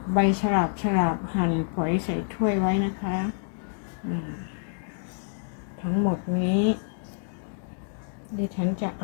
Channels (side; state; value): right; silent; digital silence